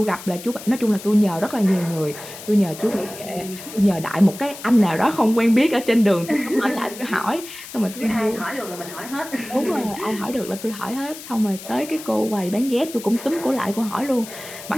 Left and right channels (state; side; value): noise; left; hiss, 14 dB below the sound